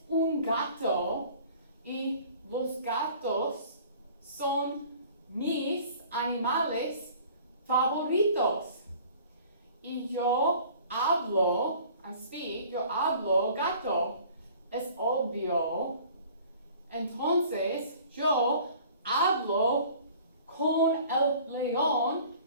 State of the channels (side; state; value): both; inverted; correlation -0.49